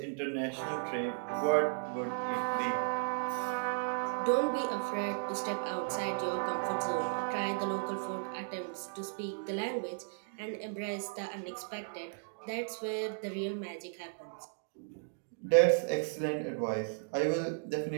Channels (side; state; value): left; silent; digital silence